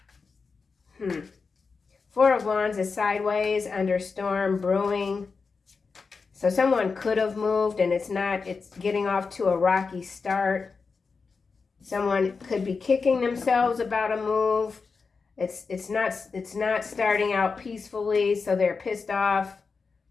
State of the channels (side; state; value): right; quieter; 4.8 dB